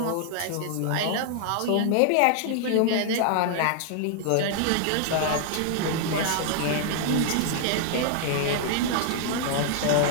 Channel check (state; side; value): different; both; correlation -0.01